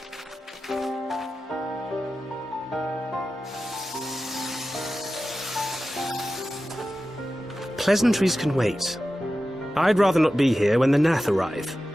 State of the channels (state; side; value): normal; both; correlation 0.93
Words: Pleasantries can wait. I'd rather not be here when the Nath arrive.